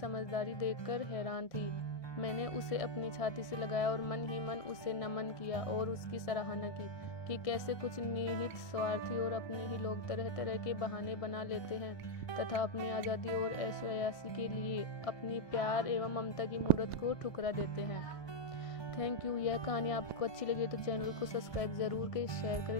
देखकर हैरान थी। मैंने उसे अपनी छाती से लगाया और मन ही मन उसे नमन किया और उसकी सराहना की कि कैसे कुछ निहित स्वार्थी और अपने ही लोग तरह तरह के बहाने बना लेते हैं तथा अपनी आज़ादी और ऐशोयाशी के लिए अपनी प्यार एवं ममता की मूर्त को ठुकरा देते हैं। Thank you. यह कहानी आपको अच्छी लगी तो चैनल को सब्सक्राइब जरूर करें, शेयर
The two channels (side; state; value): right; late; 1.6 ms